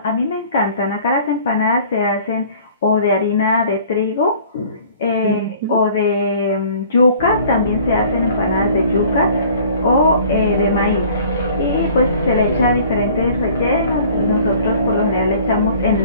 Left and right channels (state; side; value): inverted; both; correlation -0.51